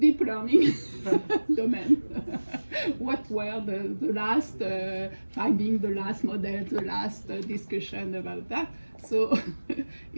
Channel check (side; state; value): both; inverted; correlation -1.00